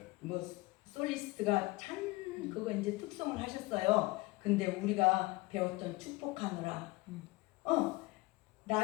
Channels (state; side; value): quieter; right; 22.6 dB